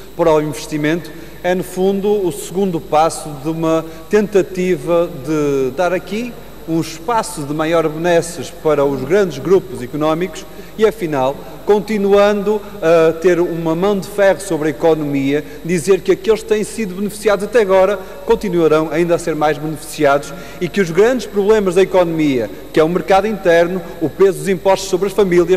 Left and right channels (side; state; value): both; identical; correlation 1.00